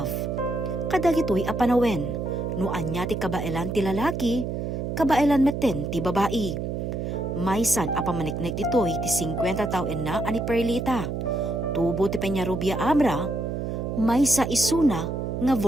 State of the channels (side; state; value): right; noise; hum, 3 dB below the sound